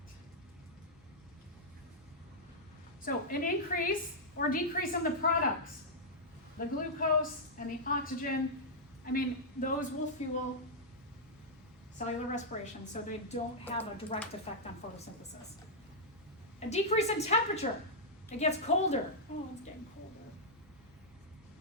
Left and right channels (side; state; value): both; normal; correlation -0.08